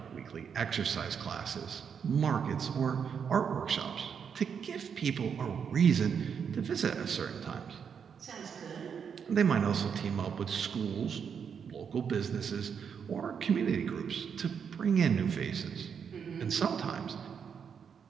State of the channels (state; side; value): quieter; left; 7.0 dB